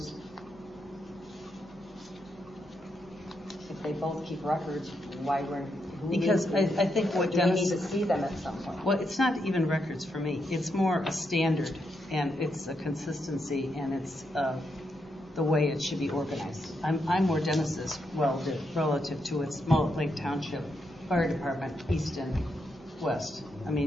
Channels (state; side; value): normal; both; correlation 0.81